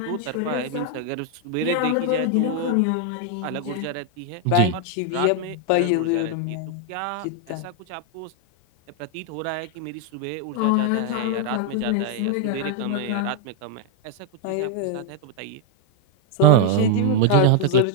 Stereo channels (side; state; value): both; different; correlation 0.01